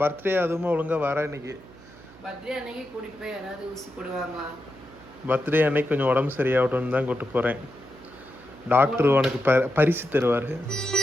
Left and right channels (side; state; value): right; noise; hum, 22 dB below the sound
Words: பர்த்டே அதுவுமா ஒழுங்கா வர. இன்னைக்கு பர்த்டே அன்னைக்கு கூட்டிட்டு போய் யாராவது ஊசி போடுவாங்களா? பர்த்டே அன்னைக்கு கொஞ்சம் உடம்பு சரியாகட்டும்னு தான் கூப்பிட்டு போகிறேன். டாக்டர் உனக்கு பரிசு தருவார்.